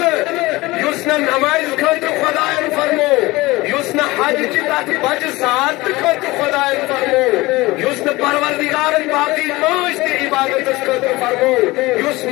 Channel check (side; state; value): right; quieter; 20.8 dB